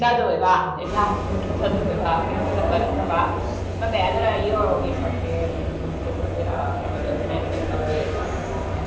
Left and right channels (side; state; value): both; identical; correlation 1.00